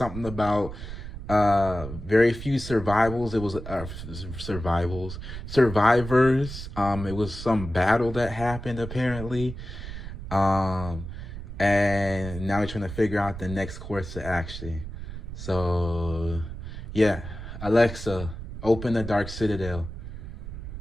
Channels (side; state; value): right; noise; rumble, 9 dB below the sound